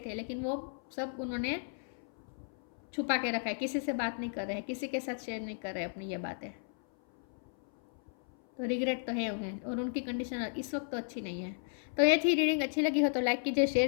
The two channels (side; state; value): right; silent; 55 dB below the other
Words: है, लेकिन वो सब उन्होंने छुपा के रखा है। किसी से बात नहीं कर रहे हैं, किसी के साथ शेयर नहीं कर रहे अपनी ये बातें। तो रिग्रेट तो है उन्हें, और उनकी कंडीशन इस वक्त तो अच्छी नहीं है। तो ये थी रीडिंग। अच्छी लगी हो तो लाइक कीजिए, शेयर